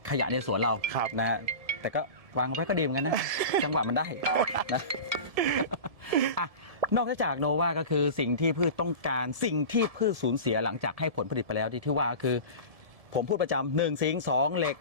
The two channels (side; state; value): left; late; 1.7 ms